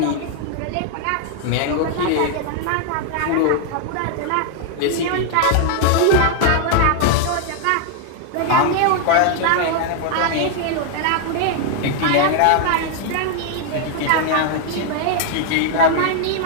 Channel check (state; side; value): different; both; correlation 0.00